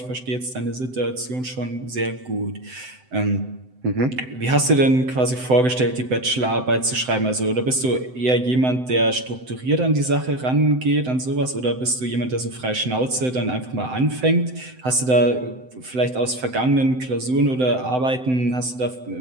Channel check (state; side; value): late; left; 7.8 ms